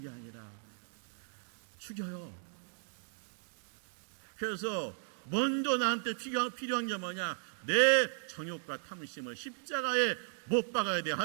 게 아니라 죽여요. 그래서 먼저 나한테 필요한 게 뭐냐, 내 정욕과 탐심을 십자가에 못 박아야 돼.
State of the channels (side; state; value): left; silent; digital silence